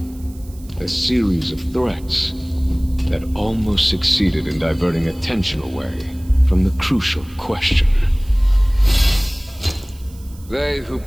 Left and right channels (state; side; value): noise; right; hiss, 25 dB below the sound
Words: A series of threats that almost succeeded in diverting attention away from the crucial question. They who